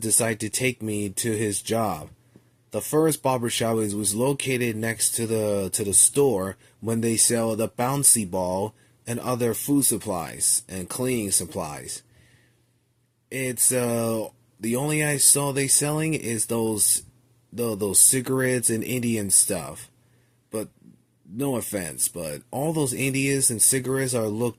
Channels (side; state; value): both; identical; correlation 1.00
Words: to take me to his job. The first barbershop was located next to the store when they sell the bouncy ball and other food supplies and cleaning supplies. It's the only I saw they selling is those cigarettes and Indian stuff. But no offense, but all those Indians and cigarettes are look